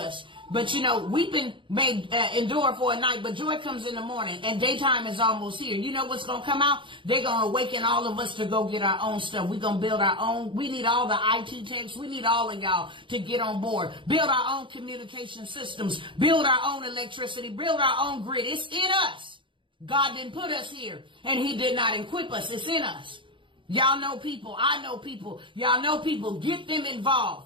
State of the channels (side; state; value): left; late; 0.24 ms